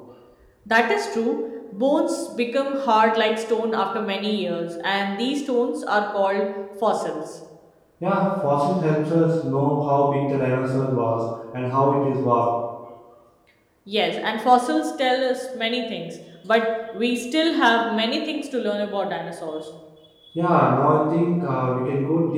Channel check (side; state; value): both; identical; correlation 1.00